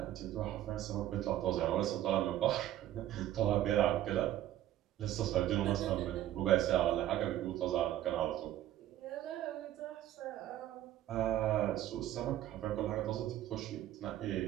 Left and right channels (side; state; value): left; quieter; 12.9 dB